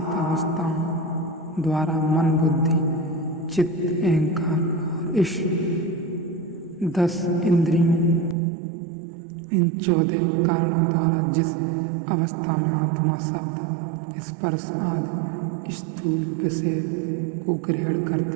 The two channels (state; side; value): drops out; left; at 8.3 s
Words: अवस्थाओं द्वारा मन, बुद्धि, चित्त, अहंकार और इस 10 इंद्रियों, इन 14 कारणों द्वारा जिस अवस्था में आत्मा शब्द, स्पर्श आदि स्थूल विषय को ग्रहण